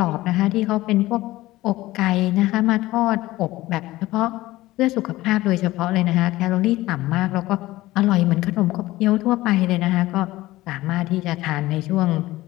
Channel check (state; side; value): quieter; right; 17.6 dB